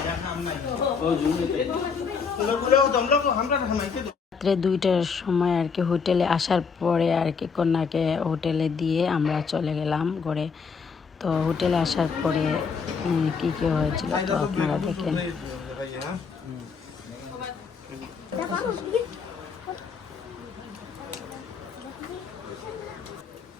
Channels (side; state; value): right; quieter; 5.6 dB